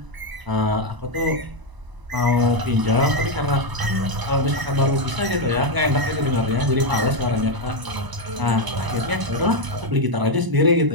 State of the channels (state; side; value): late; left; 1.0 ms